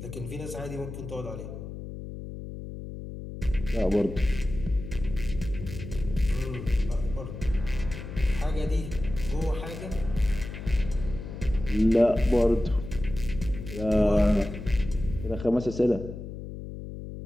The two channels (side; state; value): left; noise; hum, 10 dB below the sound